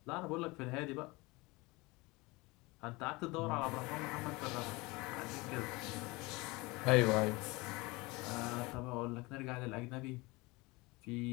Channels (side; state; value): right; quieter; 23.8 dB